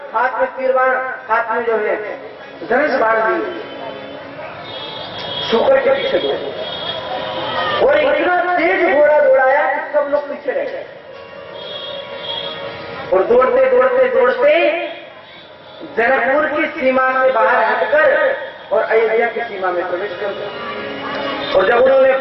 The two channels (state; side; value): identical; both; correlation 1.00